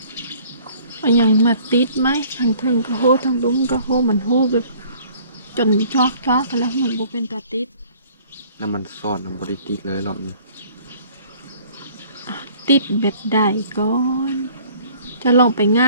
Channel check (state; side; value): inverted; both; correlation -0.54